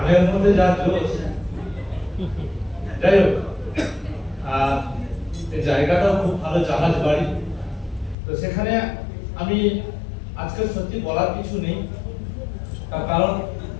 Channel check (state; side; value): drops out; right; at 8.2 s